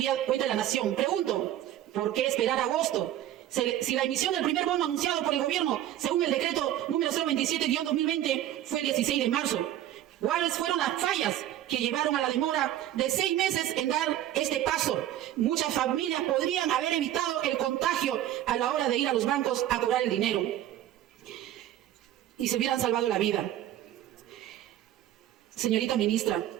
Nación. Pregunto, ¿por qué esperar agosto? Si la emisión del primer bono anunciado por el gobierno, según el decreto número 027-2020, fue el 16 de marzo. ¿Cuáles fueron las fallas que llevaron a la demora de 6 meses en dar este paso? Muchas familias podrían haber evitado el contagio a la hora de ir a los bancos a cobrar el dinero y se hubieran salvado la vida. Señorita ministra,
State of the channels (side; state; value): left; quieter; 12.6 dB